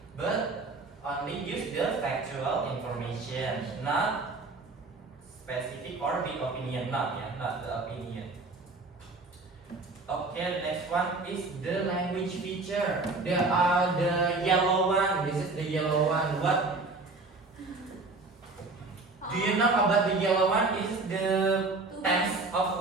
But only use the factual information, not specific or big opinion, not the opinion. Okay, next one is the language feature. There are the yellow one. This is the yellow one. What do you know about the yellow one? This is the tense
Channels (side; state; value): left; quieter; 3.5 dB